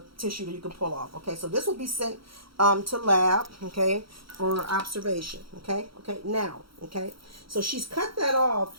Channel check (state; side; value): late; left; 0.75 ms